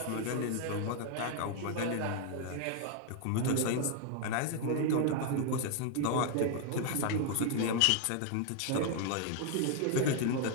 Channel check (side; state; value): both; different; correlation 0.00